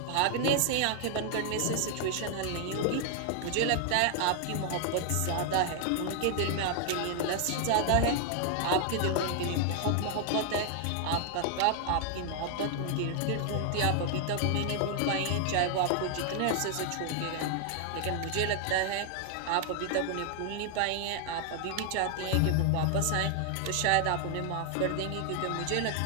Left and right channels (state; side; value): different; both; correlation 0.00